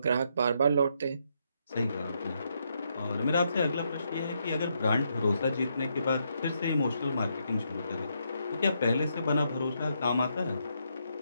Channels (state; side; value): inverted; both; correlation -0.78